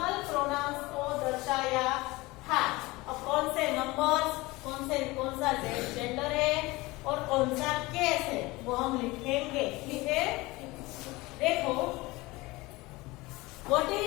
प्रोनाउंस को दर्शाया था. अब कौन से नंबर्स, कौन सा जेंडर है और कौन सा केस है वो हम लिखेंगे. ठीक है, देखो, what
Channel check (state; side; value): quieter; right; 21.6 dB